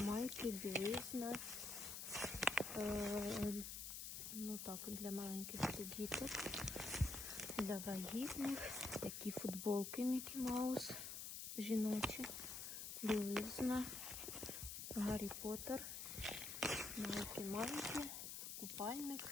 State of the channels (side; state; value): left; noise; hiss, 6 dB below the sound